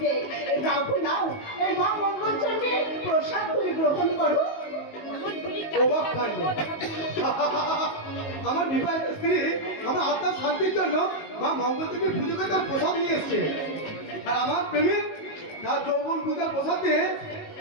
নাও নাও, এই মা মঙ্গল চন্দ্রের প্রসাদ তুমি গ্রহণ করো। আমার বিবাহিত স্ত্রী আমার আত্মার শান্তির জন্য মা মঙ্গল দেবীর পুজোকে তার প্রসাদ নিয়ে এসছে, আর আমার প্রেমিক তার যৌবন পূজার প্রসাদ দিয়ে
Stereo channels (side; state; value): right; late; 19 ms